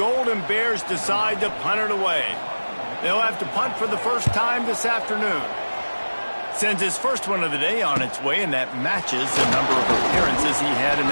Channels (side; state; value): both; inverted; correlation -1.00